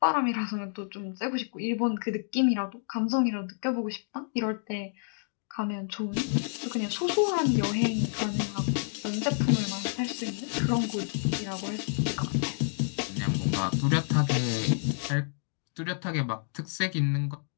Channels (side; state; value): right; silent; digital silence